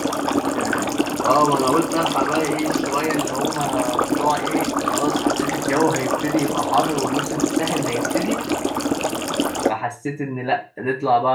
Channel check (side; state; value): both; identical; correlation 1.00